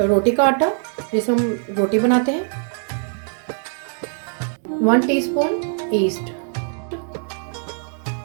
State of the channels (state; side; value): silent; left; 61 dB below the other